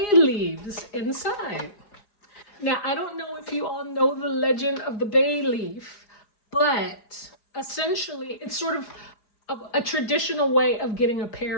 leaves inside. Now, I don't know if you all know the legend of the bay leaf, but essentially it's sort of a traditional way of getting a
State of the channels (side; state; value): right; late; 4.8 ms